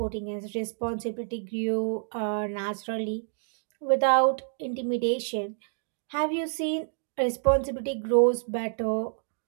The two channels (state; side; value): silent; left; digital silence